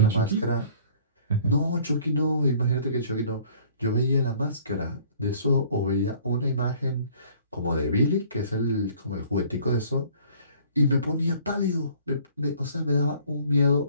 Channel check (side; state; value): both; inverted; correlation -0.54